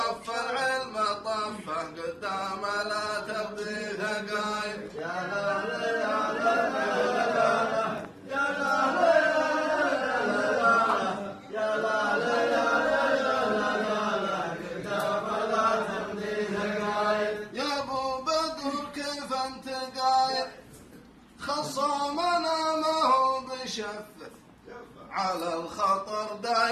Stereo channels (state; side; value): identical; both; correlation 1.00